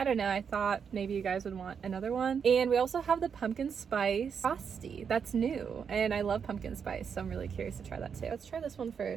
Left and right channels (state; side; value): quieter; left; 6.8 dB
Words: don't know, I thought maybe you guys would want another one. And we also have the pumpkin spice frosty. That's new, and I love pumpkin spice, so I'm really curious to try that too. Let's try this one